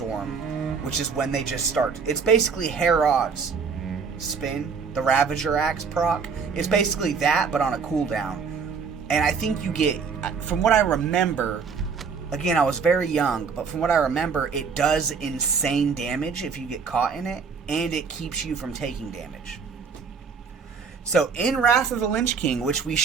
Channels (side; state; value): left; quieter; 5.7 dB